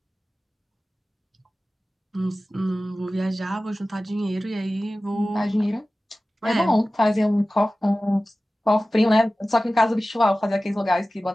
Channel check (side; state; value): both; normal; correlation 0.96